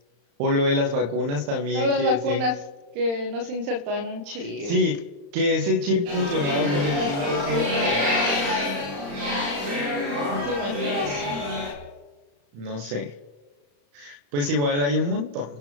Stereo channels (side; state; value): left; late; 35 ms